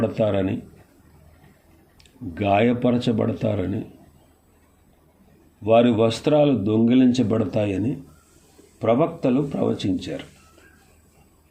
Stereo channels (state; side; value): identical; both; correlation 1.00